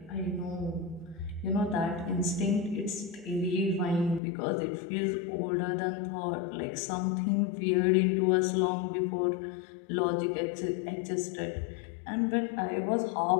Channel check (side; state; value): right; drops out; at 4.2 s